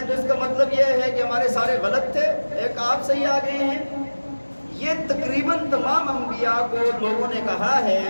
تو اس کا مطلب یہ ہے کہ ہمارے سارے غلط تھے، ایک آپ صحیح آ گئے ہیں۔ یہ تقریباً تمام انبیاء کو لوگوں نے کہا ہے،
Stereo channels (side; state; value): both; inverted; correlation -1.00